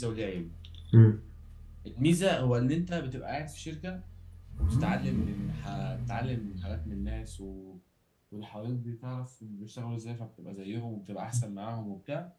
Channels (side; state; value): both; identical; correlation 1.00